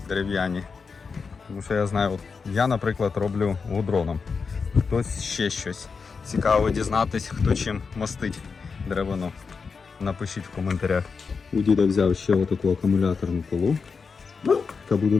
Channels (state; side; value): quieter; right; 5.2 dB